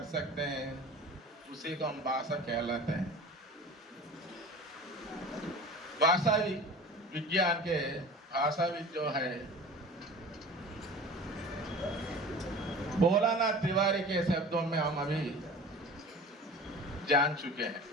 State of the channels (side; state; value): both; normal; correlation 0.39